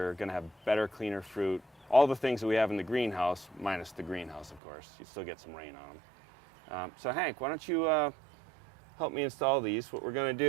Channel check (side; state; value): left; drops out; at 4.6 s